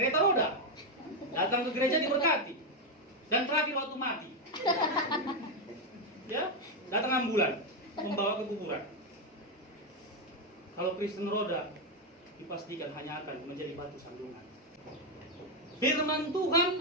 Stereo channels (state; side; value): normal; both; correlation 0.05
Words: roda. Datang ke gereja diberkati. Dan terakhir waktu mati. Ya, datang ambulan membawa ke kuburan. Kalau Kristen roda dipastikan hanya akan menjadi batu sandungan. Firman